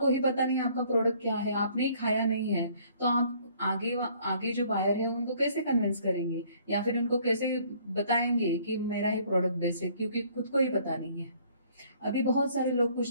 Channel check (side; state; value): both; inverted; correlation -0.60